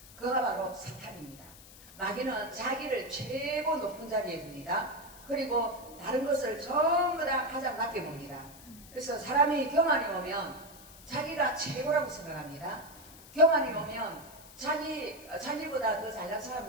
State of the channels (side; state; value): left; noise; hiss, 19 dB below the sound